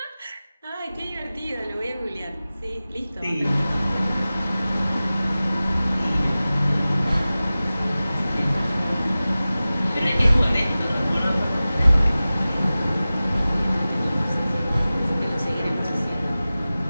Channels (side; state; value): both; inverted; correlation -0.97